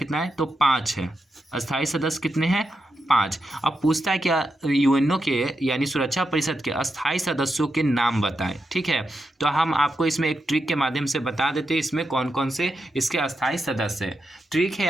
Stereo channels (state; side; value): normal; both; correlation 0.86